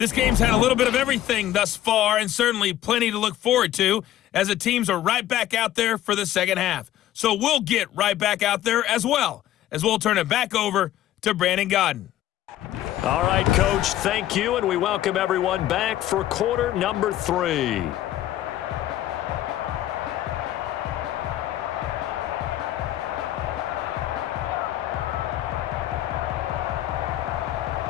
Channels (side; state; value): right; quieter; 13.1 dB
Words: game's had a little bit of everything thus far and certainly plenty to look forward to as the teams are right back out there for the second half. So we'll get right back out there as well as we'll turn it back over to Brandon Godden. All right, Coach, thank you, and we welcome everyone back for quarter number 3.